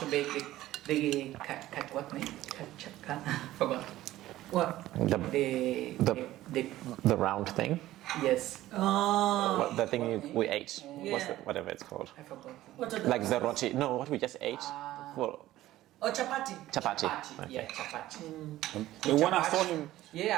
make what name? Forgot. What? The round thing. Yes. Oh. The thing we ate. Yeah. Whatever it's called. I forgot. What are Like the roti. No, what we just ate. Well, Oh, chapati. chapati. Yeah, chapati. The one I saw him,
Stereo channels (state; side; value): quieter; left; 15.2 dB